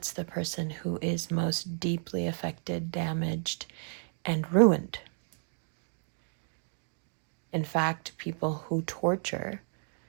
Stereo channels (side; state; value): left; silent; 56 dB below the other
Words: the person who is most deeply affected, damaged, and ruined. In fact, people who torture,